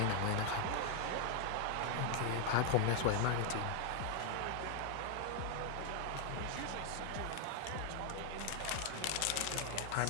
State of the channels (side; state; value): both; different; correlation 0.00